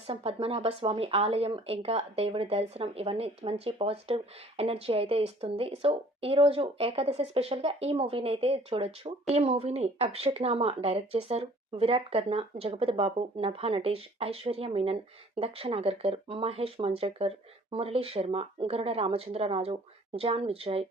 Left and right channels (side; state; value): both; normal; correlation 0.54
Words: పద్మనాభ స్వామి ఆలయం ఇంకా దేవుడి దర్శనం ఇవన్నీ మంచి పాజిటివ్ ఎనర్జీ అయితే ఇస్తుంది. సో ఈ రోజు ఏకాదశి స్పెషల్ గా ఈ మూవీని అయితే చూడొచ్చు. ఈ మూవీని అభిషేక్ నామా డైరెక్ట్ చేశారు. విరాట్ కర్ణ, జగపతి బాబు, నభా నటేష్, ఐశ్వర్య మీనన్, దక్ష నాగర్కర్, మహేష్ మంజ్రేకర్, మురళీ శర్మ, గరుడ రామచంద్రరాజు, జాన్ విజయ్,